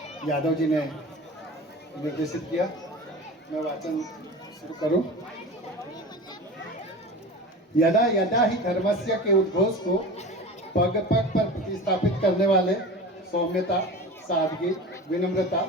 यादव जी ने निर्देशित किया। मैं वाचन शुरू करूं। यदा यदा ही धर्मस्य के उद्घोष को पग पग पर प्रतिस्थापित करने वाले सौम्यता, सादगी, विनम्रता,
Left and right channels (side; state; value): both; normal; correlation 0.32